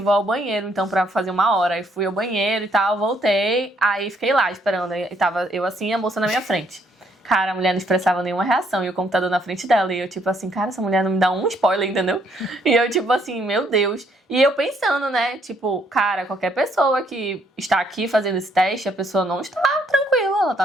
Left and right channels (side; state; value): both; normal; correlation 0.69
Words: ao banheiro, então, pra fazer 1 hora. Aí fui ao banheiro e tal, voltei, aí fiquei lá esperando. Aí tava eu assim e a moça na minha frente. Cara, a mulher não expressava nenhuma reação e o computador na frente dela. E eu tipo assim, cara, essa mulher não me dá um spoiler, entendeu? E eu tipo assim, meu Deus. E eu pensando, né, tipo, cara, qualquer pessoa que está aqui fazendo esse teste, a pessoa não está tranquila, ela tá